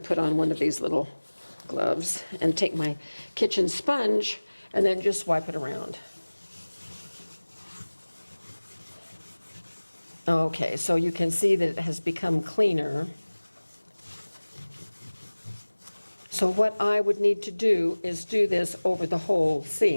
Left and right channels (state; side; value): inverted; both; correlation -1.00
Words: put on one of these little gloves and take my kitchen sponge and then just wipe it around. Okay, so you can see that it has become cleaner. So what I would need to do is do this over the whole